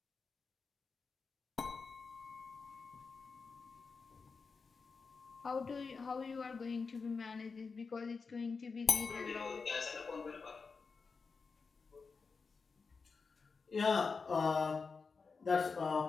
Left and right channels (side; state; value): right; quieter; 4.8 dB